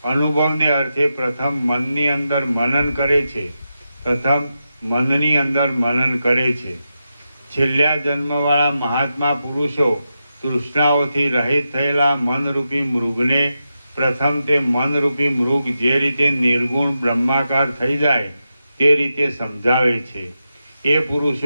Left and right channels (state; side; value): inverted; both; correlation -0.88